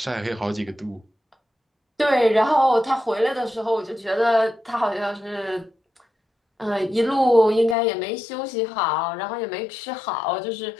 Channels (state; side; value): drops out; right; at 7.8 s